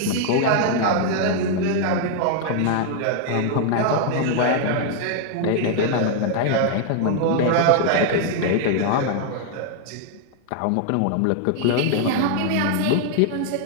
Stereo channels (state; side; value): different; both; correlation 0.00